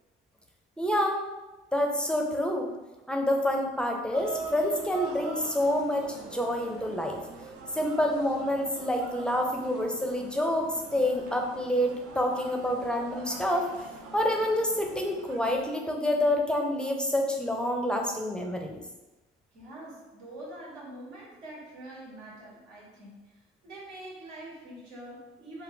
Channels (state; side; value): normal; both; correlation 0.64